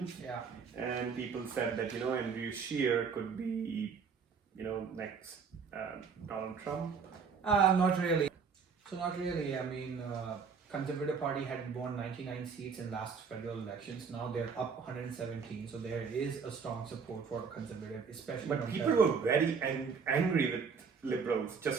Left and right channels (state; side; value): quieter; left; 5.7 dB